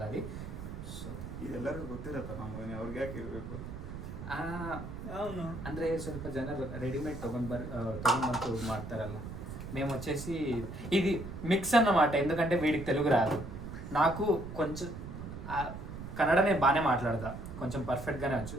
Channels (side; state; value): right; noise; rumble, 9 dB below the sound